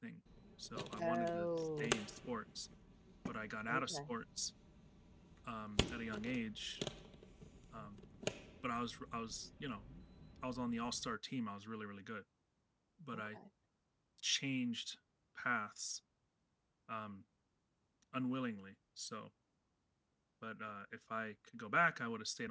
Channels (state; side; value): identical; both; correlation 1.00